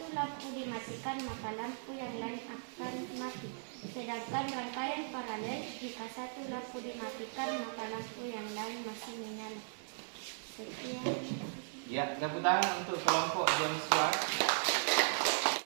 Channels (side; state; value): left; silent; 53 dB below the other